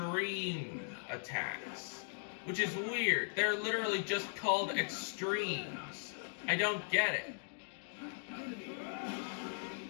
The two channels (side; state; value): right; silent; digital silence